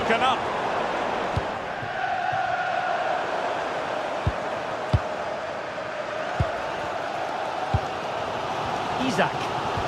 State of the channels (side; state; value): both; identical; correlation 1.00